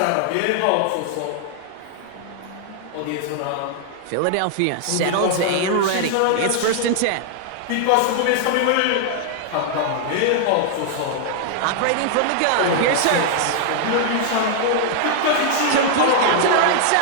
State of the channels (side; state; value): both; different; correlation 0.00